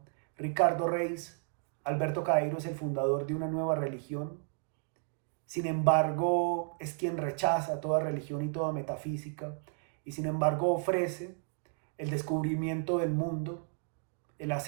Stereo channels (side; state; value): left; silent; 56 dB below the other